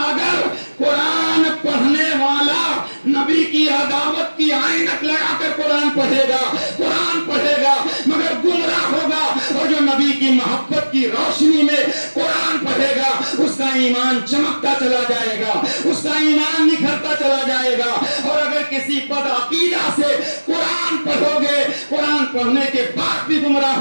قرآن پڑھنے والا نبی کی عداوت کی عینک لگا کر قرآن پڑھے گا مگر گمراہ ہوگا، اور جو نبی کی محبت کی روشنی میں قرآن پڑھے گا اس کا ایمان چمکتا چلا جائے گا، اس کا ایمان نکھرتا چلا جائے گا۔ اور اگر کسی بدعقیدہ سے قرآن پڑھو گے، قرآن پڑھنے کے بعد بھی گمراہ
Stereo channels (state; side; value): inverted; both; correlation -1.00